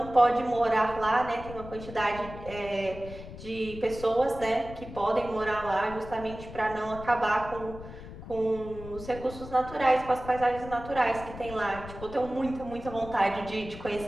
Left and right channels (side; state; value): left; noise; rumble, 13 dB below the sound